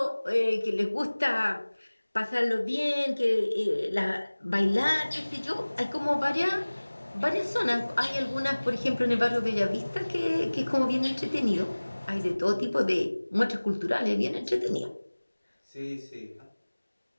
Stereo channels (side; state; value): both; inverted; correlation -1.00